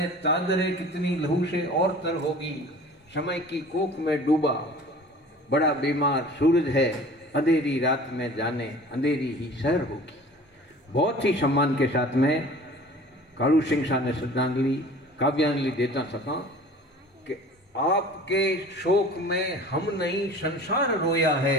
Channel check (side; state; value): both; normal; correlation 0.44